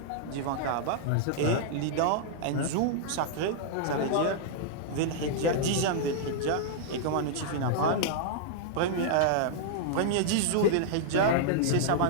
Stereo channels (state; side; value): different; both; correlation -0.01